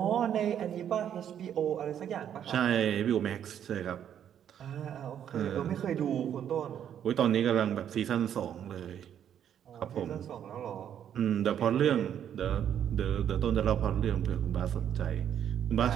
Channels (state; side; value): quieter; left; 9.5 dB